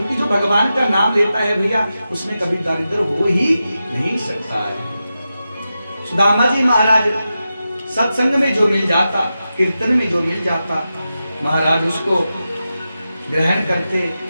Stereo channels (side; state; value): both; inverted; correlation -0.91